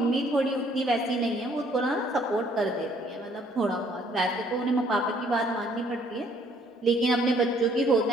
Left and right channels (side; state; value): both; normal; correlation 0.63